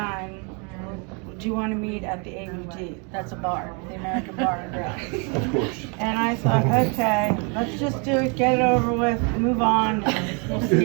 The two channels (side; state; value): left; quieter; 34.7 dB